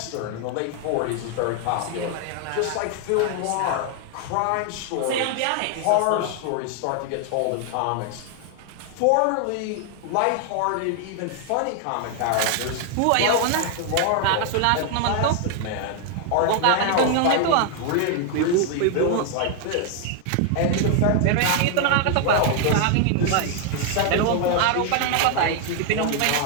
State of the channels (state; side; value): different; both; correlation 0.00